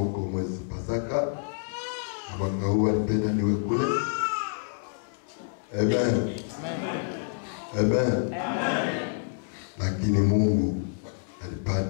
mwezi Pasaka, na mwaka huu nipenda niwe kule. Amen. Amen. Lakini Mungu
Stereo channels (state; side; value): silent; right; digital silence